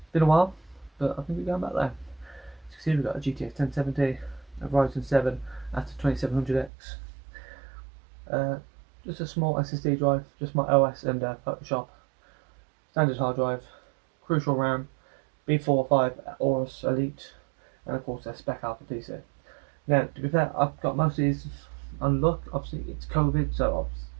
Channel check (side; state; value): left; drops out; at 6.7 s